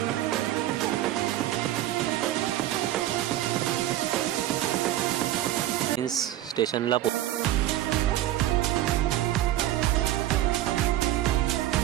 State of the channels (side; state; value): left; quieter; 13.7 dB